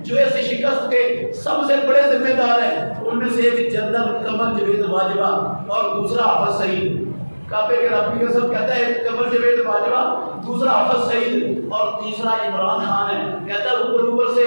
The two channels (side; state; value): both; inverted; correlation -1.00